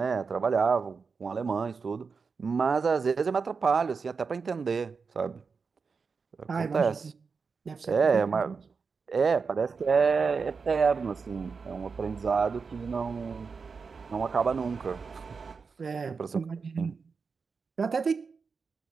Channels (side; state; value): left; quieter; 5.1 dB